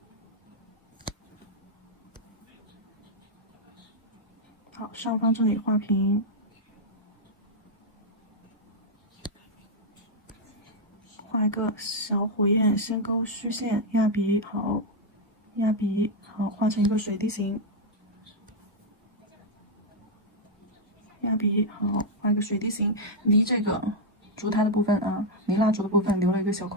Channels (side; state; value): both; normal; correlation -0.01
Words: 好，上方这里画平，画一个小火焰，先勾虚线，压笔，好，压笔，好，画成一个水滴形。压笔，好，画一个水滴形，离这个烛台的部分离蜡烛的部分留了一个小